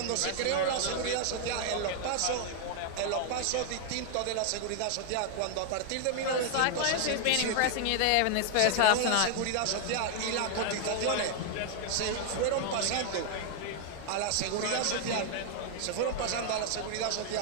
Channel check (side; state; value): both; different; correlation 0.00